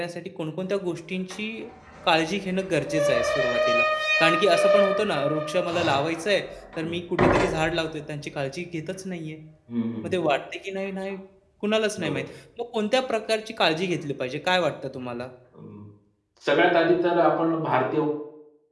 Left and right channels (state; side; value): identical; both; correlation 1.00